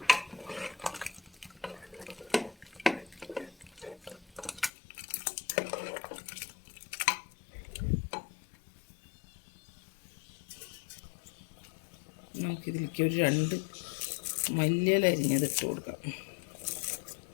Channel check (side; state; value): right; drops out; at 4.7 s